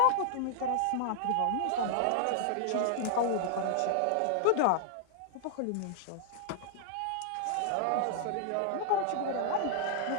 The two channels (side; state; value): both; different; correlation -0.01